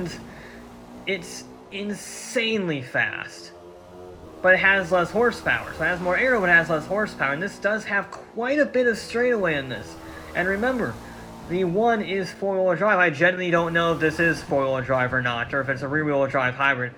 it's insanely fast. But it has less horsepower. So it has more aero, but it has less horsepower. And this does have quite a bit of straightaway in this. And remember, the one is four-wheel drive. I genuinely don't know if this is four-wheel drive or not, or if it's a rear-wheel drive hybrid.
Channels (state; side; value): identical; both; correlation 1.00